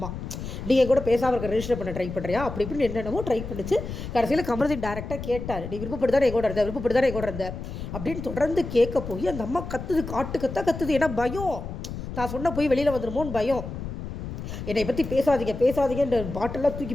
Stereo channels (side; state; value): left; noise; rumble, 8 dB below the sound